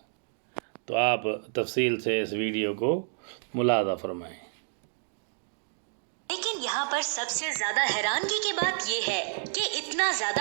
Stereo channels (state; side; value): silent; left; digital silence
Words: तो आप तफसील से इस वीडियो को मुलादा फरमाएं। लेकिन यहाँ पर सबसे ज्यादा हैरानगी की बात यह है कि इतना